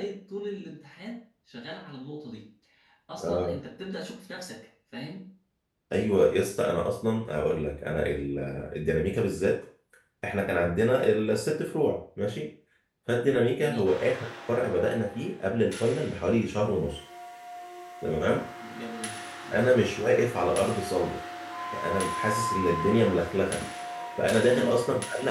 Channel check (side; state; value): both; identical; correlation 1.00